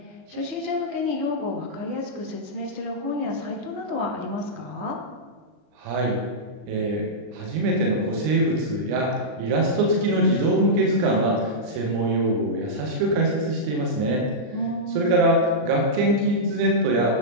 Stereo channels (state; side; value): late; left; 39 ms